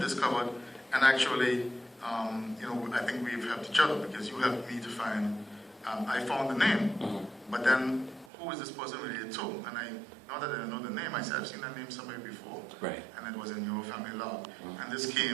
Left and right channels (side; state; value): left; drops out; at 8.3 s